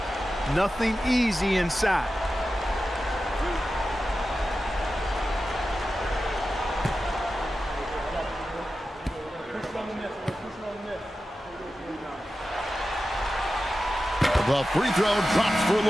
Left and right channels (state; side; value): normal; both; correlation 0.93